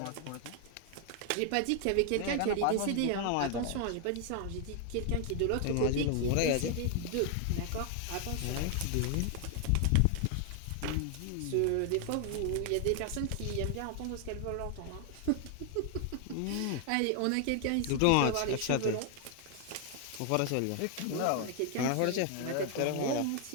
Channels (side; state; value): both; different; correlation 0.00